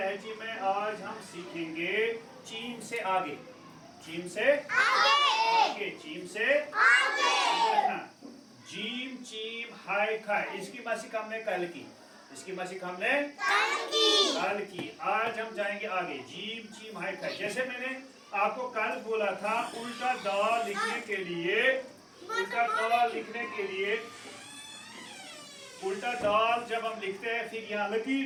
में आज हम सीखेंगे चीम से आगे, चीम से आगे। जीम चीम हाय खाय, इसकी मशक हमने कल की। आज हम जाएंगे आगे। जीम चीम हाय खाय। जैसे मैंने आपको कल बोला था, उल्टा दाल लिखने के लिए उल्टा दाल जब हम लिखते हैं फिर यहाँ लकीर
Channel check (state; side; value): identical; both; correlation 1.00